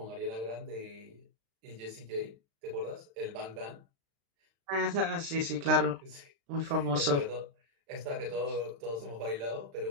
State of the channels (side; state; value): left; late; 36 ms